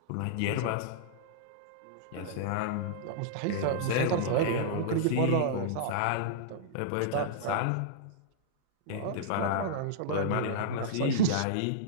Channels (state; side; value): different; both; correlation -0.02